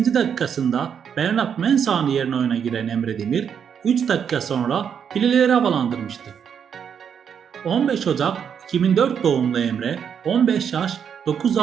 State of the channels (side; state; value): left; quieter; 7.7 dB